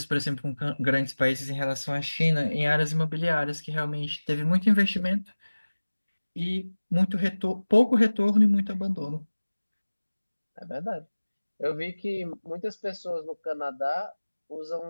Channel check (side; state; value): both; inverted; correlation -1.00